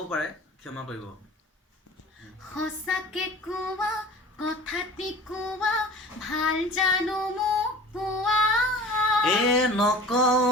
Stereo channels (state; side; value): normal; both; correlation 0.41